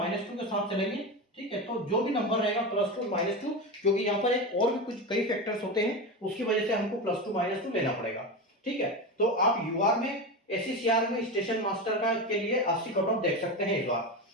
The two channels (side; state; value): both; normal; correlation 0.20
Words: के साथ चलेंगे। ठीक है, तो जो भी नंबर रहेगा +2 -2, क्योंकि यहाँ पर एक और भी कुछ कई फैक्टर्स होते हैं, उसकी वजह से हमको +2 -2 लेना पड़ेगा। ठीक है, तो आप यूआर में एसीसीआर में स्टेशन मास्टर का के लिए 80 कट ऑफ देख सकते हैं इस बार